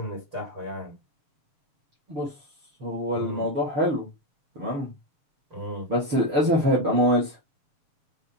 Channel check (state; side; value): late; left; 6.8 ms